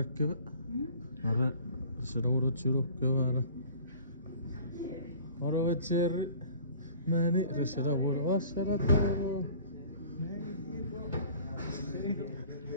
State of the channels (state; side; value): inverted; both; correlation -0.47